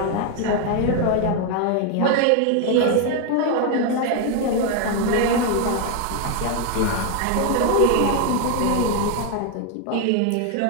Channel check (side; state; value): both; different; correlation 0.01